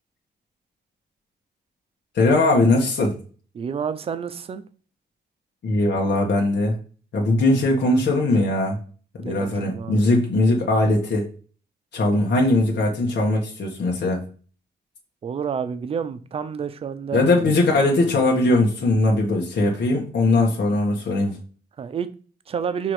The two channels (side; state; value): both; normal; correlation 0.61